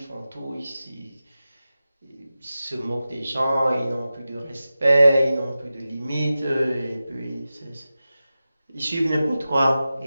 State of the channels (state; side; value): inverted; both; correlation -0.94